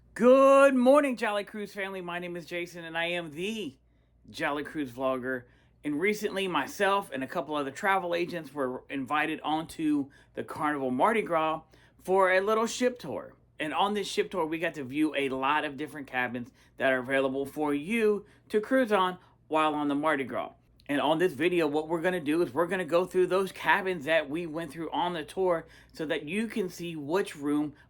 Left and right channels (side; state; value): both; identical; correlation 1.00